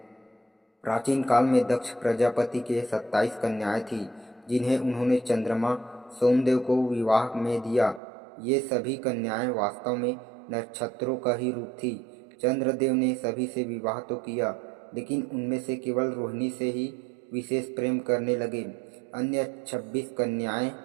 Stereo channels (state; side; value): drops out; left; at 8.0 s